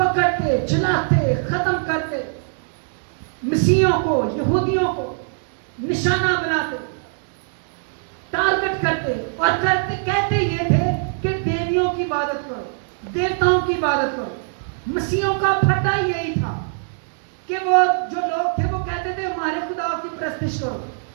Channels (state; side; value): silent; left; digital silence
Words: جلاتے، ختم کرتے، مسیحیوں کو، یہودیوں کو نشانہ بناتے، ٹارگٹ کرتے، اور کہتے یہ تھے کہ دیویوں کی عبادت کرو، دیوتاؤں کی عبادت کرو۔ مسیحیوں کا پھٹا یہی تھا کہ وہ جو لوگ تھے وہ کہتے تھے ہمارے خدا کی پرستش کرو،